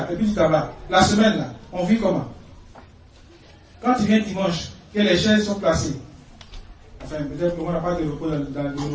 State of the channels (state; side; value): identical; both; correlation 1.00